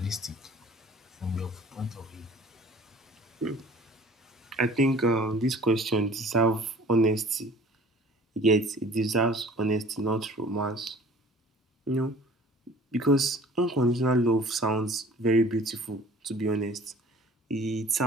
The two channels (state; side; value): normal; both; correlation 0.49